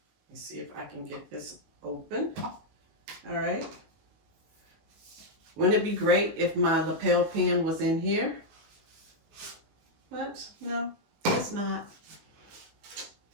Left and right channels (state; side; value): late; left; 19 ms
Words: me see if I can get this open. All right. Wouldn't it be great if my lapel pin was in here? But no, it's not.